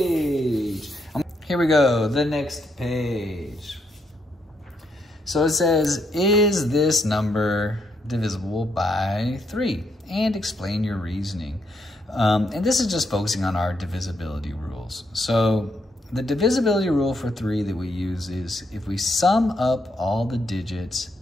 Here we go, the next page. So it says, is this number divisible by 3? And explain your reasoning. And this is just focusing on our divisibility rules. So the divisibility rule for 3 that we use is if we sum up all the digits,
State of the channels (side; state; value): both; normal; correlation 0.77